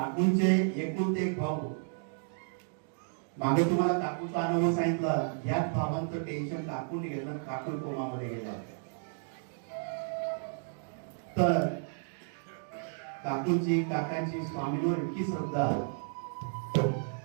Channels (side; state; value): left; silent; digital silence